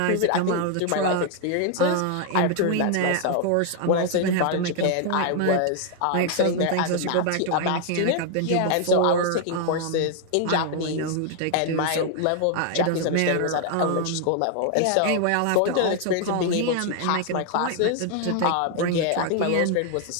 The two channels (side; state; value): both; different; correlation 0.00